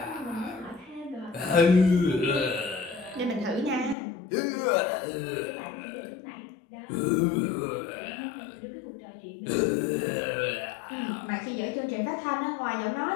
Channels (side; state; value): right; drops out; at 4.0 s